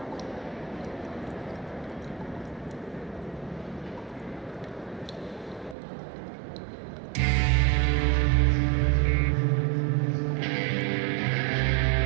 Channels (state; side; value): drops out; left; at 5.8 s